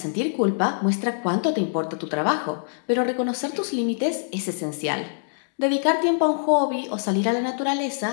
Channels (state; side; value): silent; right; digital silence